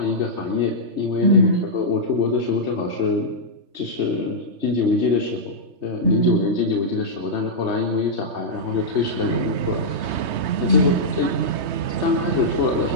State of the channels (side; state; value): left; late; 3.2 ms